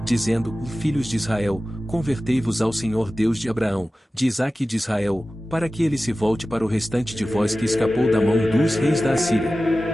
dizendo, filhos de Israel, convertei-vos ao Senhor Deus de Abraão, de Isaque e de Israel, para que ele se volte para o restante de vós que escapou da mão dos reis da Assíria.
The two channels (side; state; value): both; normal; correlation 0.95